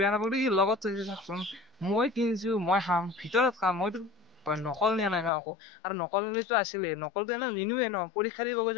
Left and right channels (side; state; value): right; drops out; at 5.3 s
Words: নাপালো, ই লগত থৈছে চাওকচোন। মই কিনিছো, মই খাম, ভিতৰত খাম, মইতো নকল নিয়া নাই ন আকৌ। আৰু নকলটো আছিলে, নকলটো এনে নিনোৱে ন, পৰীক্ষা দিব